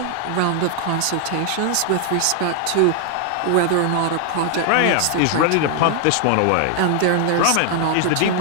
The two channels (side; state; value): both; different; correlation 0.00